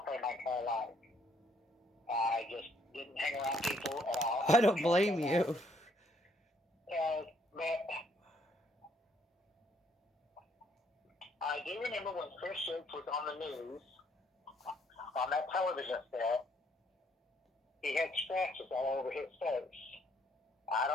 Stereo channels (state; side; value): normal; both; correlation 0.68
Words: party my entire life. I just didn't hang around people at all. I don't blame you. But I do remember when Chris Shakes was on the news, on that television set, he had scratches all over his face. I